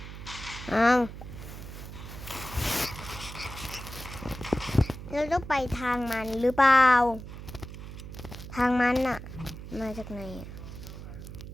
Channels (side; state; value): right; noise; hum, 11 dB below the sound